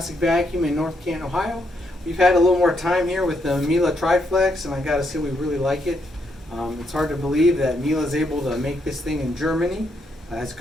Vacuum in North Canton, Ohio. We've had a little more time here with the Miele TriFlex, and I gotta say we really like it. It's hard to believe that Miele is able to make this thing in Germany. It's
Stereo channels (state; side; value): normal; both; correlation 0.78